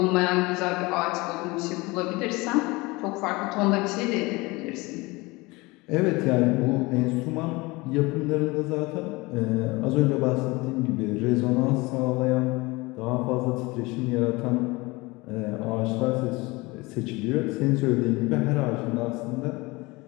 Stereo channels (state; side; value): quieter; right; 23.4 dB